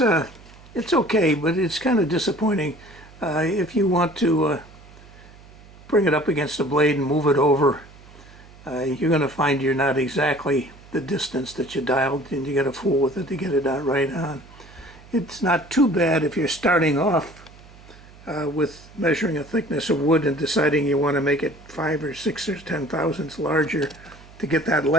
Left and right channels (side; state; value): right; noise; hum, 22 dB below the sound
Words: but it's kind of disappointing. If you want to bring it up against the blade and move it over, you're going to find you're not exactly the distance that you dialed, and you got to fool with it to get it out right on. It's not too bad if you're starting off with measuring a thickness of wood and deciding you want to make it 5 or 6 or 10 thousandths larger to get that